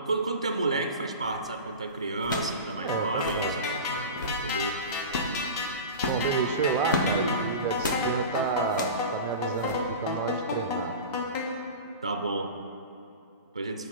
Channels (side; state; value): both; inverted; correlation -0.31